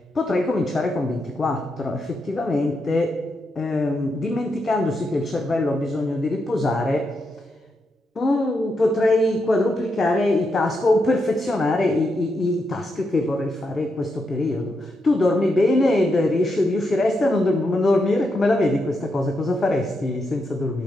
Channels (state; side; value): normal; both; correlation 0.83